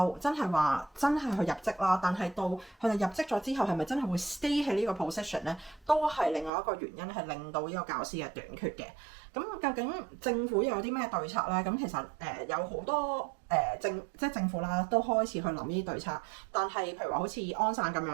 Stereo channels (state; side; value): drops out; left; at 6.5 s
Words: 真係話真係去入職啦，但係到佢哋入職咗之後，係咪真係會 stay 喺呢個 position 咧？都係另外一個原因，係令到呢個教師嘅短缺嘅。咁究竟政府又有啲咩對策咧？咁其實有好多即係政府啦，都開始去諗呢啲對策。但係譬如話好似安省咁